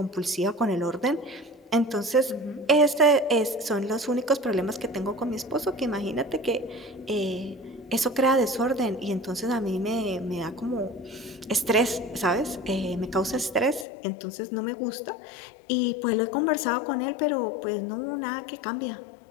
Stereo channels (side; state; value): right; drops out; at 13.9 s